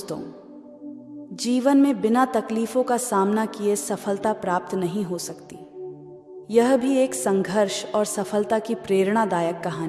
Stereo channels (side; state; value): both; identical; correlation 1.00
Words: जीवन में बिना तकलीफों का सामना किए सफलता प्राप्त नहीं हो सकती। यह भी एक संघर्ष और सफलता की प्रेरणादायक